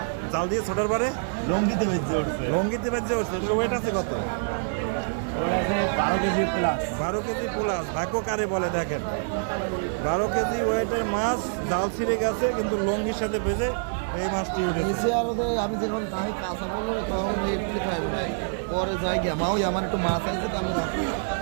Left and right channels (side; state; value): left; silent; digital silence